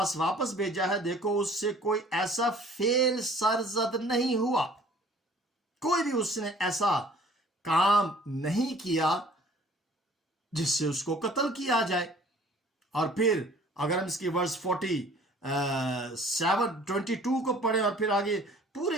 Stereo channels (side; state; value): both; normal; correlation 0.52